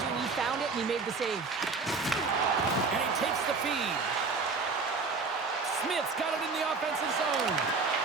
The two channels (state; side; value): quieter; left; 4.4 dB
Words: He found it and he made the save. And he takes the feed. Smith's got it in the offensive zone.